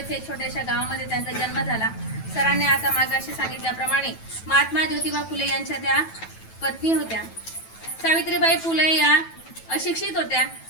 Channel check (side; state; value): right; late; 9.1 ms